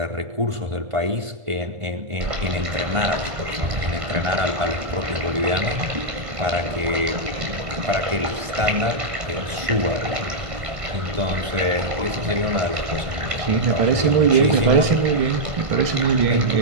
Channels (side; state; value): left; late; 1.5 ms